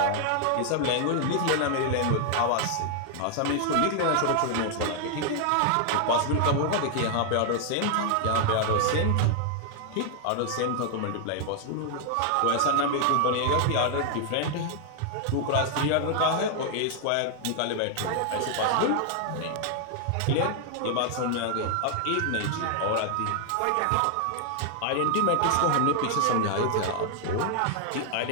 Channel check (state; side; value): different; both; correlation 0.00